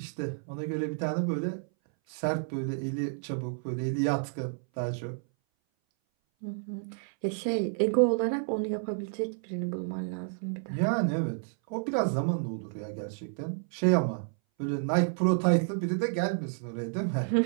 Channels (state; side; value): silent; left; 58 dB below the other